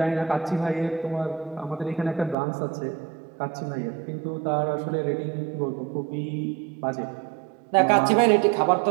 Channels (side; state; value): left; drops out; at 2.4 s